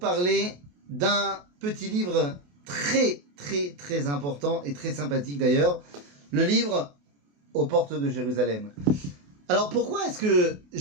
d'un petit livre très important et très sympathique d'ailleurs, le livre Aux portes de Jérusalem. Alors pourquoi est-ce que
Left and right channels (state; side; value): late; left; 28 ms